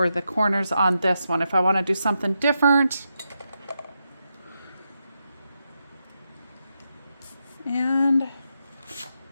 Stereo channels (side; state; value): both; inverted; correlation -0.85